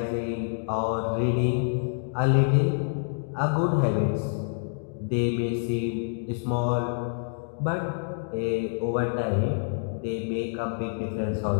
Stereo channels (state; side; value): silent; right; digital silence